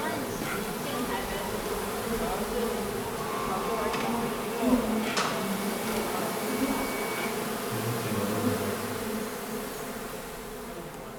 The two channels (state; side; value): identical; both; correlation 1.00